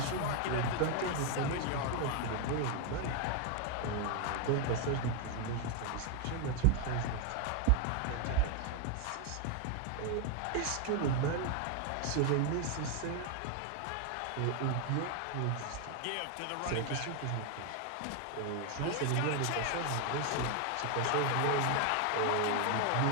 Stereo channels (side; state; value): both; different; correlation 0.01